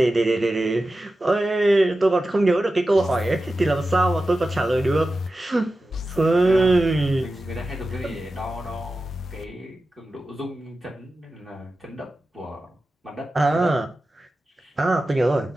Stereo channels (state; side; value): normal; both; correlation 0.93